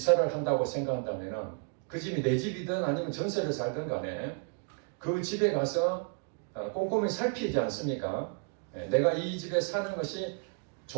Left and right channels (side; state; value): left; quieter; 38.8 dB